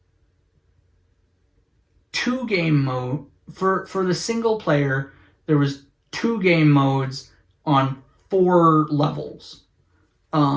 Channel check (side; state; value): both; identical; correlation 1.00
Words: 2 game mode for the single player. There was 2 game modes on 4 levels.